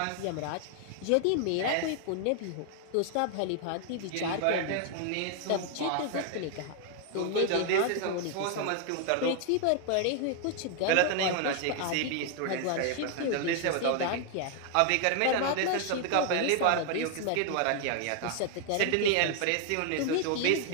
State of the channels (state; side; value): different; both; correlation 0.00